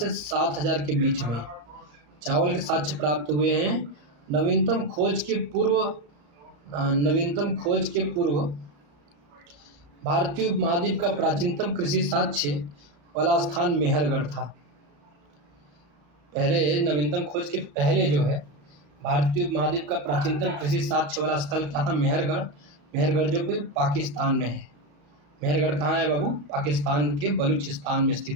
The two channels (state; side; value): late; left; 35 ms